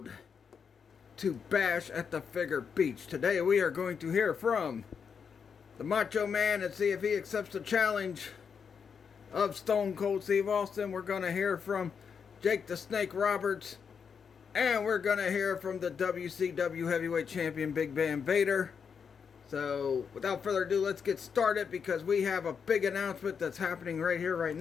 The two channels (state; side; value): quieter; right; 6.5 dB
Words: to Bash at the Figure Beach. Today we are going to hear from the Macho Man and see if he accepts the challenge of Stone Cold Steve Austin. We're going to hear from Jake the Snake Roberts. And we're going to hear from the WCW Heavyweight Champion Big Bam Vader. So, without further ado, let's get started because we have a big announcement that's happening right here, right